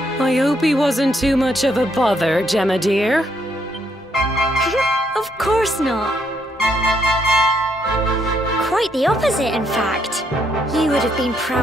I hope he wasn't too much of a bother, Gemma dear. Of course not. Quite the opposite, in fact. You would have been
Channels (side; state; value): both; normal; correlation 0.74